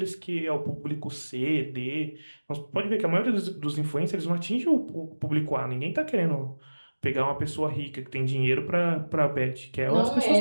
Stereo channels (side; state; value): both; inverted; correlation -1.00